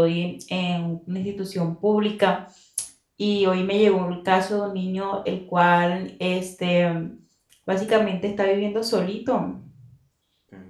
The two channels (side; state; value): both; identical; correlation 1.00